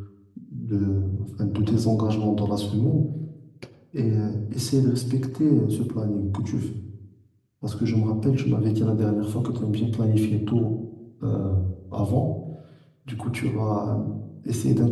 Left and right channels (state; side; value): identical; both; correlation 1.00